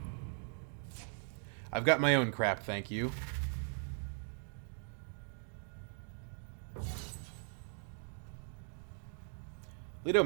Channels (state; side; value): silent; left; 51 dB below the other